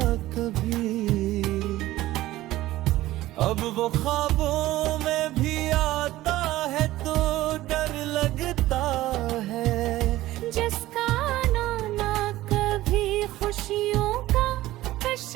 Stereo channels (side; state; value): left; quieter; 16.2 dB